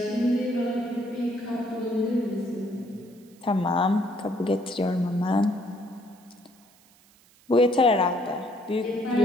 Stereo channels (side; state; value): right; noise; hiss, 29 dB below the sound